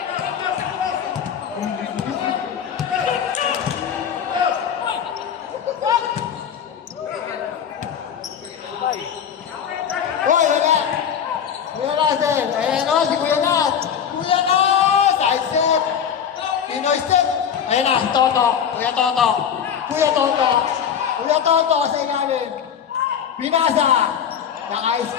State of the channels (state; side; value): quieter; right; 8.2 dB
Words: Hoy, wala! Kuya Russell! Ayan o, si Kuya Nat! Kuya Nat! Side step! Pinoy step! Ayan na, Toto! Kuya Toto! Kuya Toto! Kuya Toto sa ilalim! Pinasa! Naka-ice